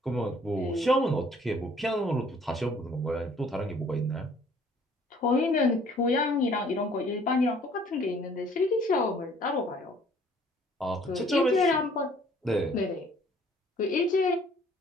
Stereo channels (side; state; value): both; normal; correlation 0.57